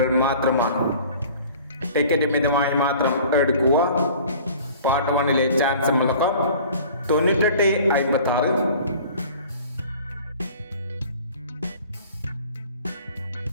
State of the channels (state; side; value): inverted; both; correlation -0.47